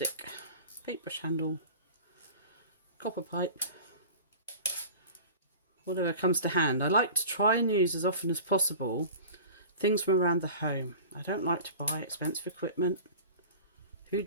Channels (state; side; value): inverted; both; correlation -0.39